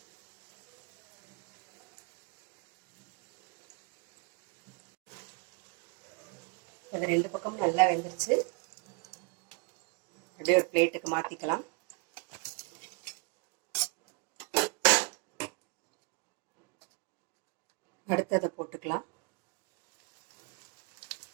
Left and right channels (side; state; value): left; quieter; 31.9 dB